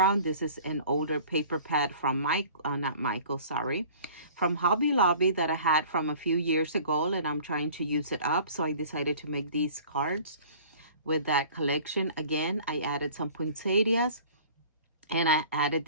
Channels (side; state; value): both; inverted; correlation -0.47